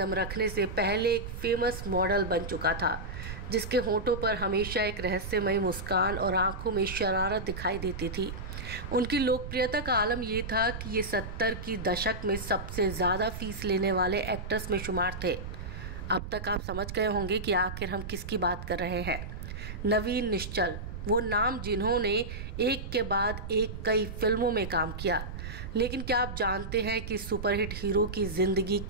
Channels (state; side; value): noise; right; rumble, 8 dB below the sound